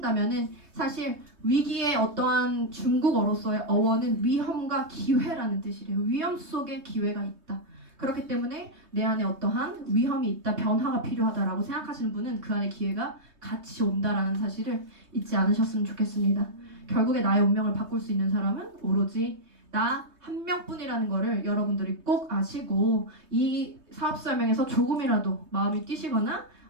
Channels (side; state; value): left; late; 3.2 ms